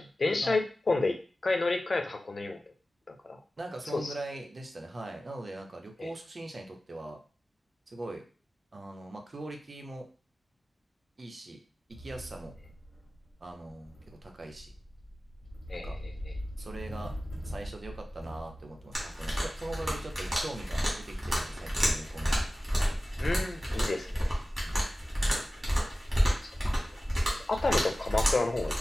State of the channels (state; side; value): normal; both; correlation 0.96